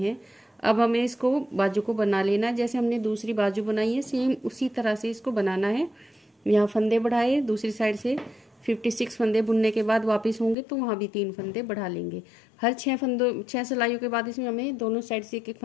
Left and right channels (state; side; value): drops out; right; at 10.6 s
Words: अब हमें इसको बाजू को बना लेना, जैसे हमने दूसरी बाजू बनाई है सेम उसी तरह से इसको बनाना है। यहाँ फंदे बढ़ाए, दूसरी साइड से 56 फंदे बुनने के बाद वापस होंगे तो वहाँ भी 3 फंदे बढ़ा लेंगे। हर 6 सिलाइयों के बाद इसमें हमें दोनों साइड से एक